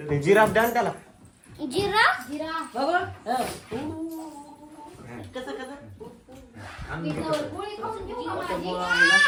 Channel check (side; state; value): both; identical; correlation 1.00